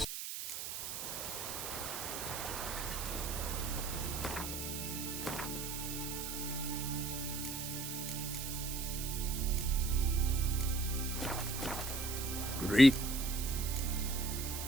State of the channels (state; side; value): noise; right; hiss, 5 dB below the sound